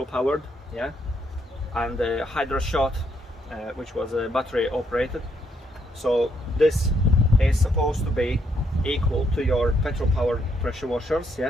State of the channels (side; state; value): both; normal; correlation 0.74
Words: powered, yeah, and Hydra Shot, which was battery operated. So this is supposed to be equal to your petrol powered pressure washers.